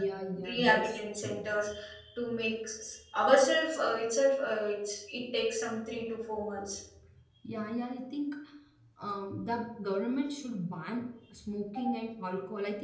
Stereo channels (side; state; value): both; identical; correlation 1.00